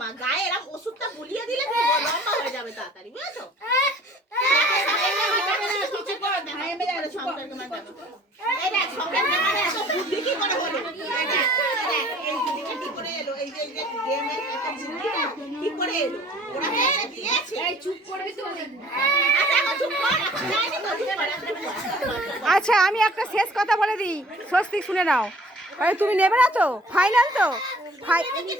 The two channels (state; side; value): normal; both; correlation 0.51